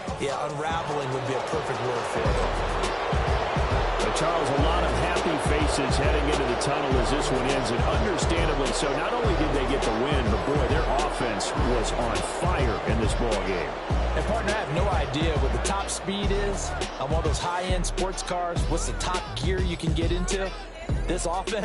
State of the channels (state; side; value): identical; both; correlation 1.00